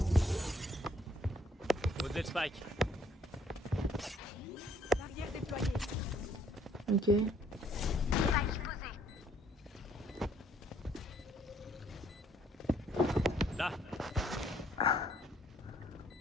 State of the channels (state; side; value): normal; both; correlation 0.64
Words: Au-delà de Spike. Barrière déployée. Ok. Là.